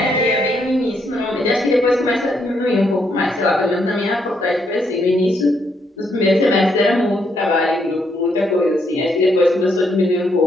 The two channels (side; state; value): both; normal; correlation 0.75